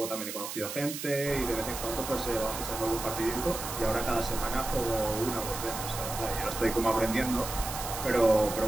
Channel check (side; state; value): right; noise; hiss, 7 dB below the sound